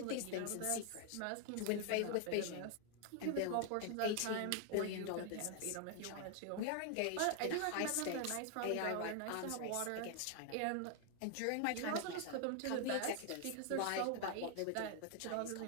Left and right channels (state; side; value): different; both; correlation 0.00